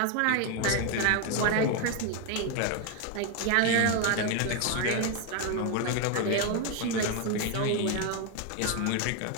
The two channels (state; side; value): different; both; correlation 0.01